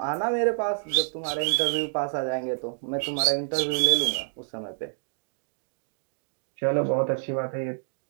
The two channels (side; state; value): left; silent; digital silence